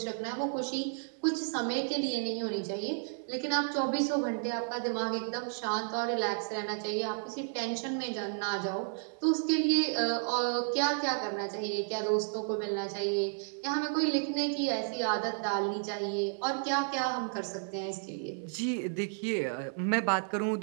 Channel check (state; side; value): silent; left; 56 dB below the other